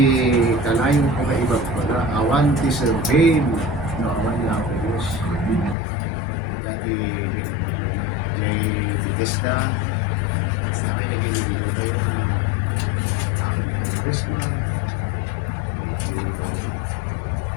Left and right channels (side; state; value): right; drops out; at 5.8 s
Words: kanayong ko na iba pala. Awan, di sir, babe. No, awan niya ako, Diyos. Dati, Jay Bethesda. Sa akin naging tayo na Christmas.